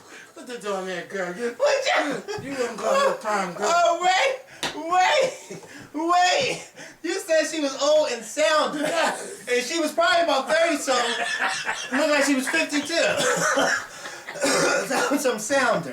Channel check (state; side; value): identical; both; correlation 1.00